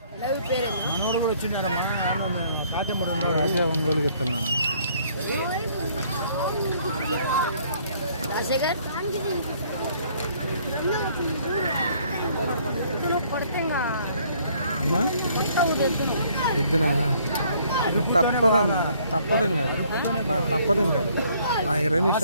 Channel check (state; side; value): inverted; both; correlation -0.62